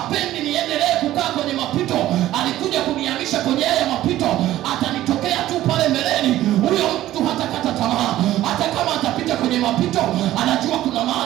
niendelee kukaa kwenye mapito, alikuja kunihamisha kwenye hayo mapito, atanitokea tu pale mbeleni. Huyo mtu hatakata tamaa, hata kama atapita kwenye mapito, anajua kuna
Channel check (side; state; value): left; quieter; 14.3 dB